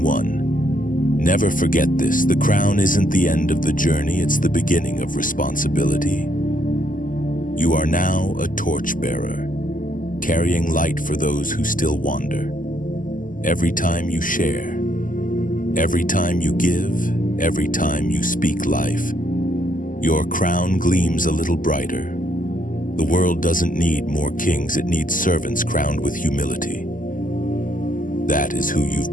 one, never forget this: the crown isn't the end of the journey, it's the beginning of responsibility. You are now a torchbearer, carrying light for those who still wander. Every time you share, every time you give, every time you speak life, your crown gleams a little brighter. The world doesn't need more kings, it needs servants crowned with humility. That is who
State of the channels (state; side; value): late; right; 0.39 ms